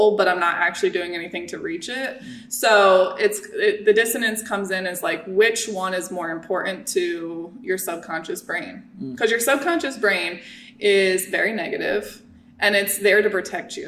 but I'm not actually doing anything to reach it. So the dissonance comes in as like, which one is more important to your subconscious brain? Because your subconscious brain is very negative, and it's there to protect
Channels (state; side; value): identical; both; correlation 1.00